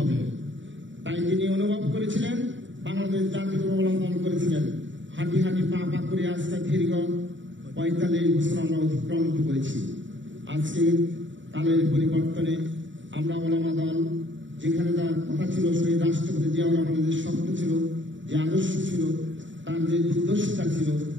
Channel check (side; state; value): left; late; 0.55 ms